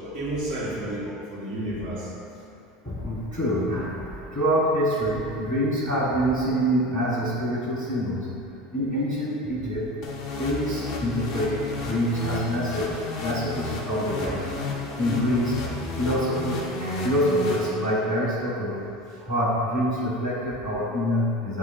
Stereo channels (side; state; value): both; normal; correlation 0.33